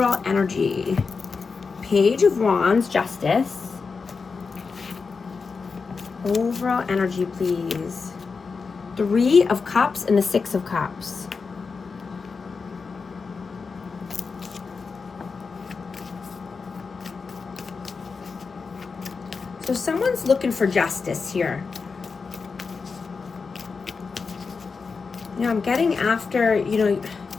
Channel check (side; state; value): right; quieter; 4.9 dB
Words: energy? Page of Wands, Justice. Overall energy, please. Three of Cups and the Six of Cups. So someone's looking for justice here. I'm getting after,